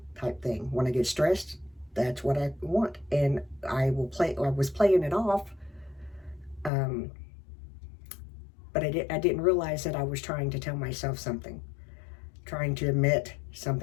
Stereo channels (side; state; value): right; drops out; at 6.7 s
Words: type thing. When I get stressed, that's what I want. And I was playing it off. But I didn't realize that I was trying to tell myself something. Trying to admit